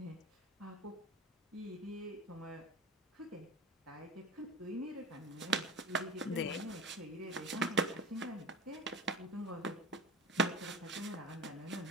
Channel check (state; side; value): normal; both; correlation 0.32